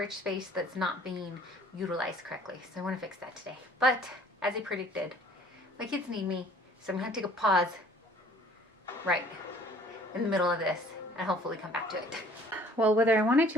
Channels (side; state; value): both; normal; correlation 0.53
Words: space that's not being utilized correctly. So I want to fix that today. But as I predicted, my kids need me, so I'm gonna take a pause right in the middle of this and hopefully come back to it. Well, whether I wanted